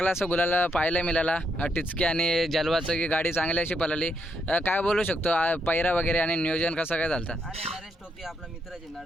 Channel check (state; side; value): normal; both; correlation 0.77